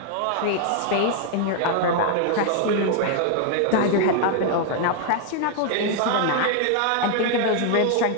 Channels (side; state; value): both; different; correlation 0.00